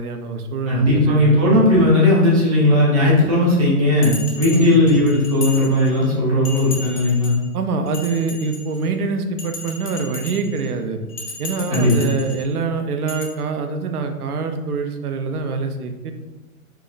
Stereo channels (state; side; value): normal; both; correlation -0.15